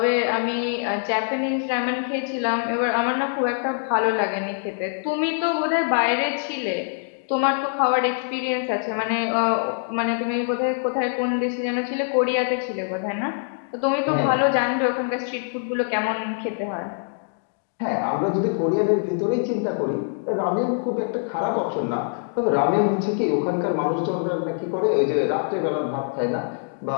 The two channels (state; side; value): silent; right; digital silence